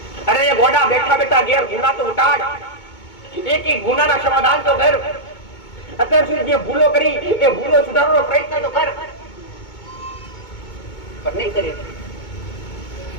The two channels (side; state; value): right; late; 2.2 ms